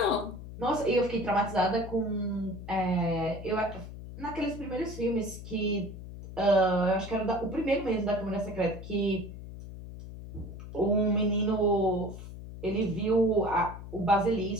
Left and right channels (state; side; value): noise; left; hum, 12 dB below the sound